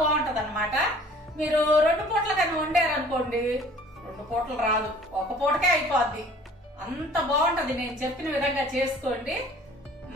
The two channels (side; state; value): both; normal; correlation 0.51